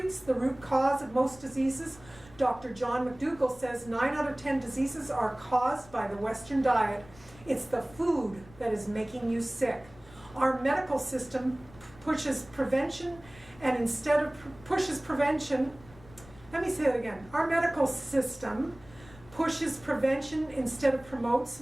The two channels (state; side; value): noise; left; rumble, 22 dB below the sound